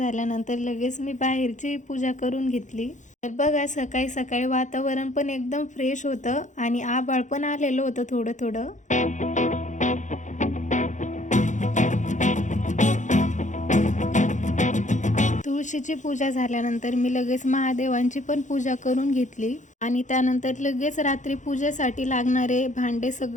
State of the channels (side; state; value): right; late; 0.36 ms